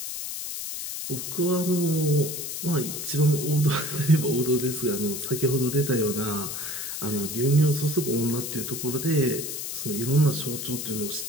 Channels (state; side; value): noise; left; hiss, 5 dB below the sound